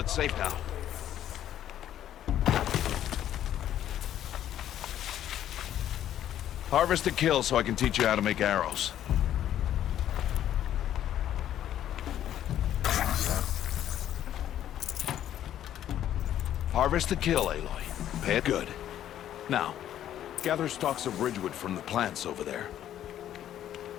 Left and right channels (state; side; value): quieter; right; 11.3 dB